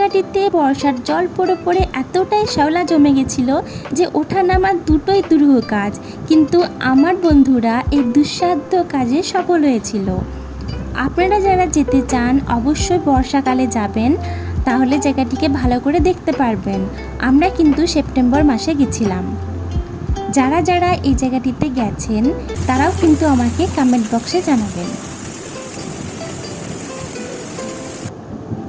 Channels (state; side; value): identical; both; correlation 1.00